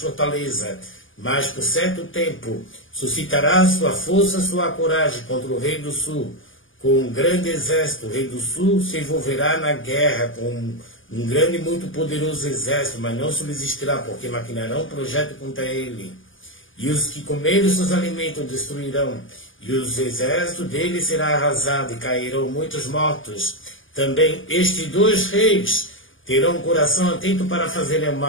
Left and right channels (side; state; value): right; late; 0.58 ms